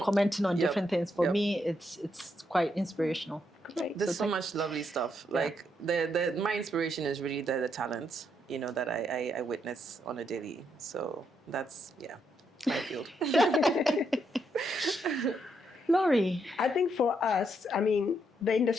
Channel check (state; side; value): normal; both; correlation 0.78